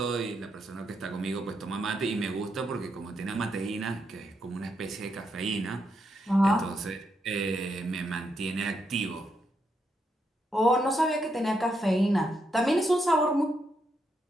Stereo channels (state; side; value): normal; both; correlation 0.80